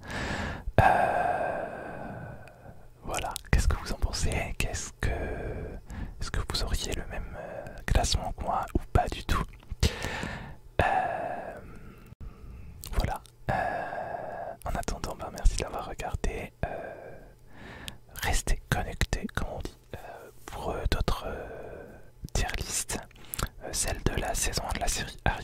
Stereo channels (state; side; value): identical; both; correlation 1.00